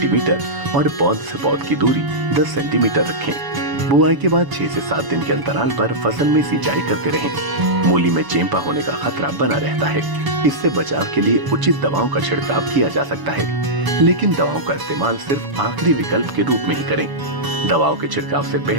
और पौध से पौध की दूरी 10 सेंटीमीटर रखें। बुआई के बाद 6 से 7 दिन के अंतराल पर फसल में सिंचाई करते रहें। मूली में चेंपा होने का खतरा बना रहता है। इससे बचाव के लिए उचित दवाओं का छिड़काव किया जा सकता है, लेकिन दवाओं का इस्तेमाल सिर्फ आखिरी विकल्प के रूप में ही करें। दवाओं के छिड़काव से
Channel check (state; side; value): late; left; 1.0 ms